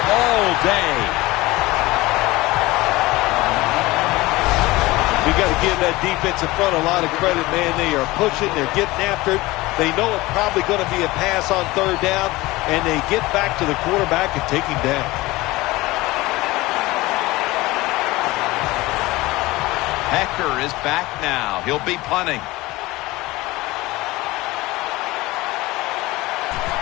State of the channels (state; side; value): quieter; right; 20.1 dB